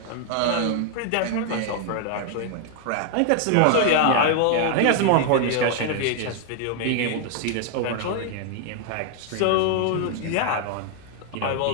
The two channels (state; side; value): different; both; correlation 0.00